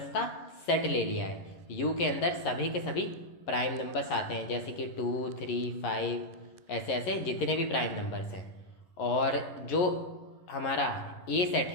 का सेट ले लिया है। यू के अंदर सभी के सभी प्राइम नंबर्स आते हैं, जैसे कि 2, 3, 5 ऐसे ऐसे जितने भी प्राइम नंबर्स हैं। और जो हमारा ए सेट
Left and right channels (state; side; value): late; right; 11 ms